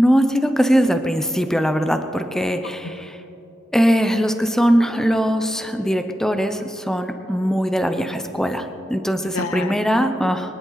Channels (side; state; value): both; normal; correlation 0.90